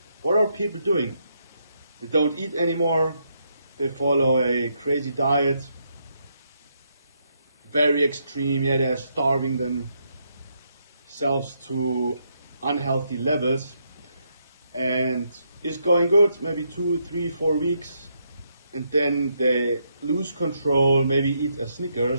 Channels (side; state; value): both; inverted; correlation -0.77